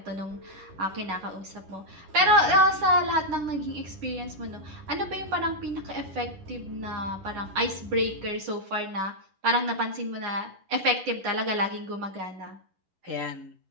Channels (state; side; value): late; left; 11 ms